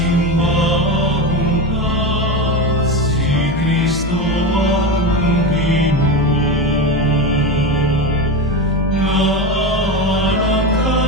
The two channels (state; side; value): normal; both; correlation 0.20